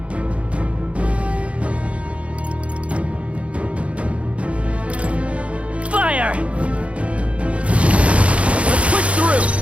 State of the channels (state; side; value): late; left; 0.062 ms